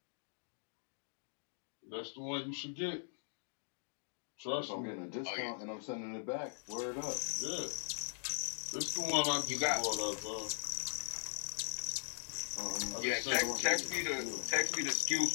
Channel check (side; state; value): right; silent; digital silence